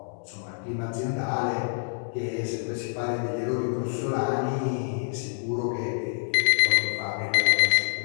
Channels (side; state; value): right; silent; digital silence